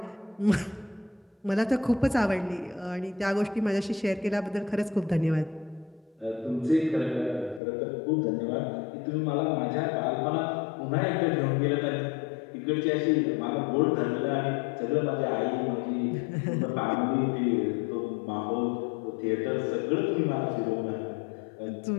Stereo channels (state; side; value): drops out; right; at 7.6 s